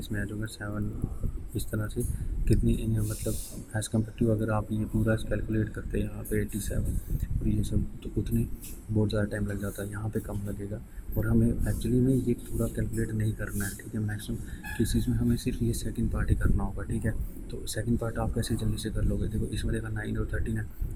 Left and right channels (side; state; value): both; identical; correlation 1.00